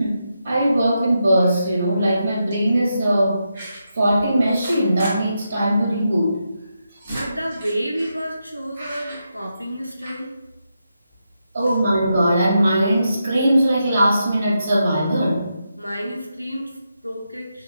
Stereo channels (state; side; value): inverted; both; correlation -0.85